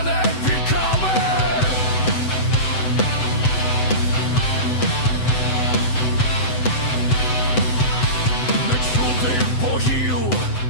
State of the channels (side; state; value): right; late; 7.9 ms